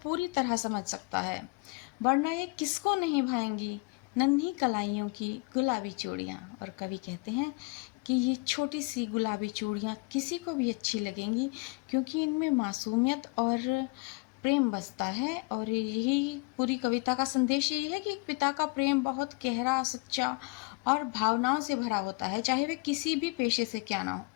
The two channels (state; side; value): quieter; right; 28.3 dB